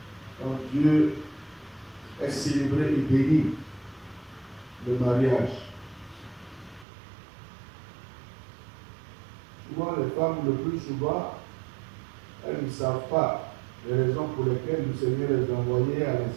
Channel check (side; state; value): left; drops out; at 6.9 s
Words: Quand Dieu est célébré et béni, le mariage. Souvent, les femmes, le plus souvent, elles ne savent pas les raisons pour lesquelles le Seigneur les a envoyées à